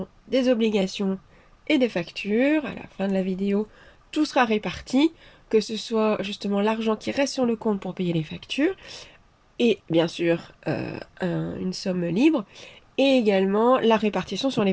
des obligations et des factures. À la fin de la vidéo, tout sera réparti, que ce soit justement l'argent qui reste sur le compte pour payer les factures et bien sûr une somme libre et également la répartition sur les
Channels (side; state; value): both; identical; correlation 1.00